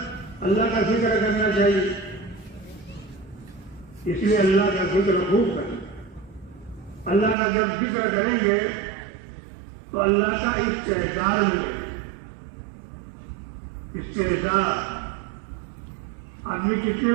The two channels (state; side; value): drops out; left; at 7.4 s